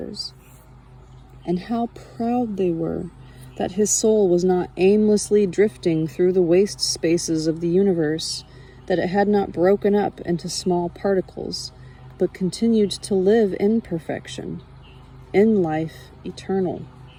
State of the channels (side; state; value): both; identical; correlation 1.00